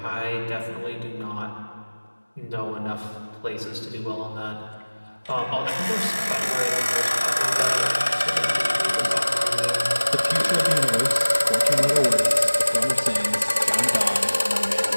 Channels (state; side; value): inverted; both; correlation -1.00